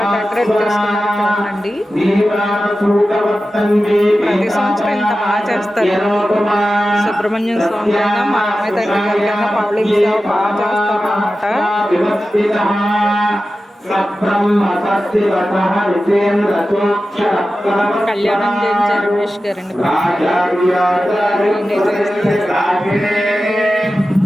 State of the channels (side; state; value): both; normal; correlation 0.94